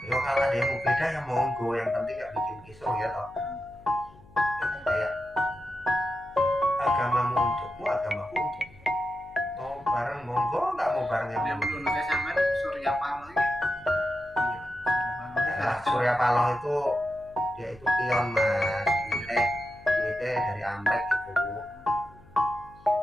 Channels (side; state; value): left; noise; hum, 24 dB below the sound